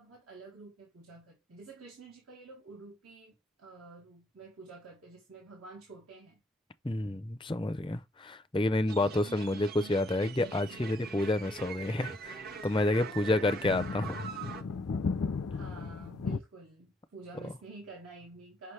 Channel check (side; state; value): both; normal; correlation 0.71